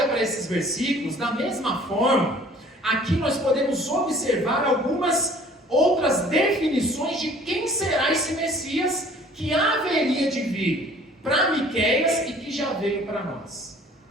para esses versículos, da mesma forma, aqui nós podemos observar algumas outras definições de quem será esse Messias que haveria de vir para Miqueias e que já veio para nós.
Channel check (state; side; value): normal; both; correlation 0.52